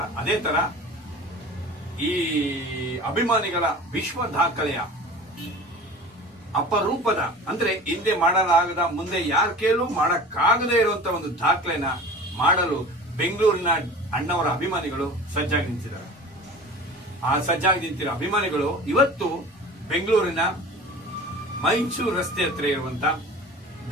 ಅದೇ ತರ ಈ ಅಭಿಮಾನಿಗಳ ವಿಶ್ವ ದಾಖಲೆಯ ಅಪರೂಪದ, ಅಂದ್ರೆ ಹಿಂದೆ ಮಾಡಲಾಗದ, ಮುಂದೆ ಯಾರ ಕೇಳೂ ಮಾಡಕ್ಕಾಗದೇ ಇರುವಂತ ಒಂದು ದಾಖಲೆನ ಮಾಡಲು ಬೆಂಗಳೂರಿನ ಅಣ್ಣವರ ಅಭಿಮಾನಿಗಳು ಸಜ್ಜಾಗಿ ನಿಂತಿದ್ದಾರೆ. ಆ ಸಜ್ಜಾಗಿ ನಿಂತಿರೋ ಅಭಿಮಾನಿಗಳು ಇವತ್ತು ಬೆಂಗಳೂರಿನ ಮೈಸೂರು ರಸ್ತೆ ಹತ್ರ ಇರುವಂತ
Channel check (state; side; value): normal; both; correlation 0.38